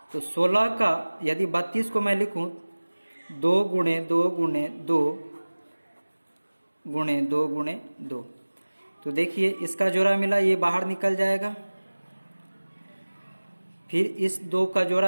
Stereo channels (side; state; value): both; inverted; correlation -1.00